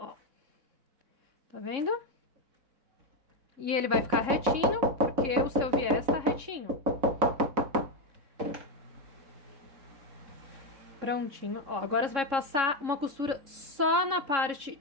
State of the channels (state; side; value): late; left; 3.7 ms